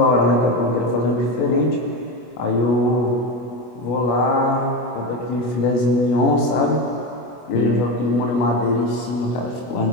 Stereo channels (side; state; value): right; late; 25 ms